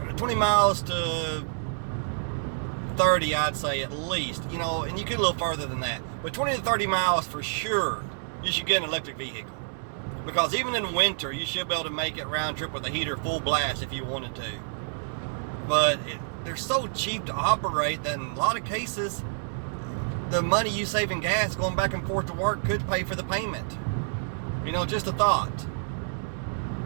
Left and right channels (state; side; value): silent; left; 59 dB below the other